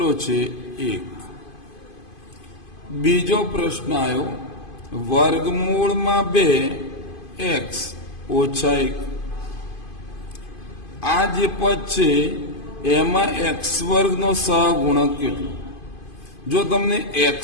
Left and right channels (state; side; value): late; right; 2.5 ms